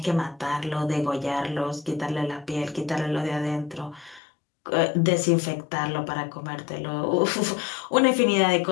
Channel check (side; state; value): right; drops out; at 4.2 s